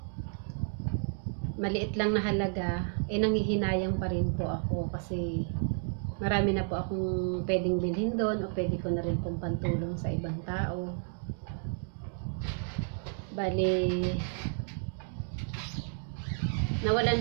na halaga, nanghihinayang pa rin po ako kasi marami na po akong pwedeng bilhin doon o pwede ko na rin pong pantulong sa ibang tao. Bali,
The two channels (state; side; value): silent; left; 57 dB below the other